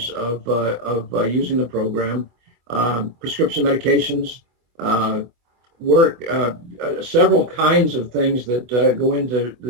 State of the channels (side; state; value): left; late; 25 ms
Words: of using the program. Prescription medications, several kinds of things that go into